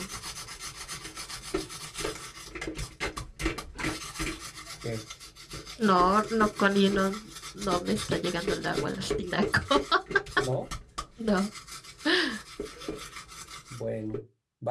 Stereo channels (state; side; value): identical; both; correlation 1.00